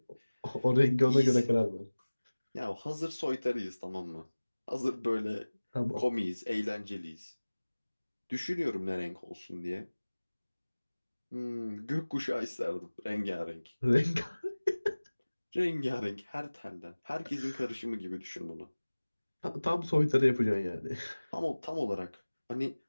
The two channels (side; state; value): both; inverted; correlation -1.00